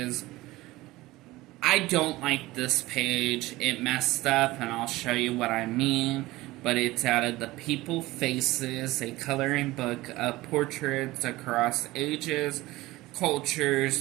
I don't like this page. It messed up, and I'll show you what I mean. But it's out of the People Faces, a coloring book of portraits across ages,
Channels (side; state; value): left; quieter; 18.9 dB